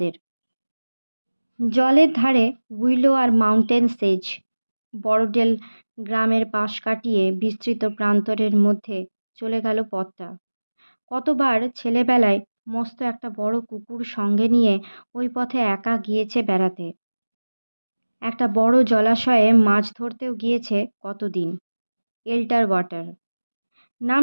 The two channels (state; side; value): inverted; both; correlation -1.00